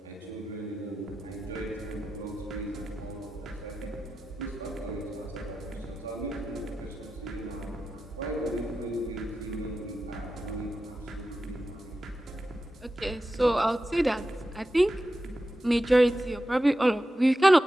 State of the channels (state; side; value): normal; both; correlation 0.91